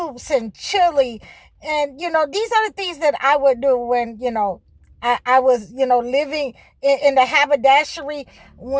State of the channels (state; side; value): identical; both; correlation 1.00